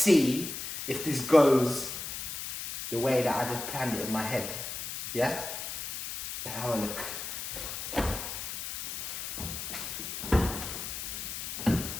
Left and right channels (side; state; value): left; noise; hiss, 6 dB below the sound